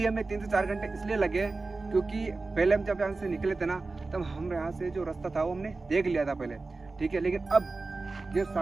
हमें 3 से 4 घंटे इसलिए लगे क्योंकि पहले हम जब यहाँ से निकले थे ना, तब हम यहाँ से जो रास्ता था वो हमने देख लिया था पहले, ठीक है। लेकिन अब ये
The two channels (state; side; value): quieter; left; 3.6 dB